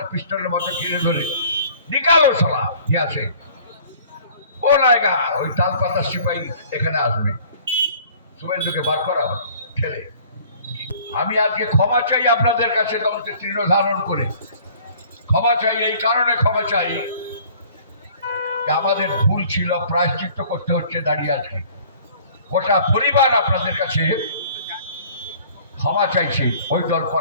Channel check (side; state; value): both; inverted; correlation -0.52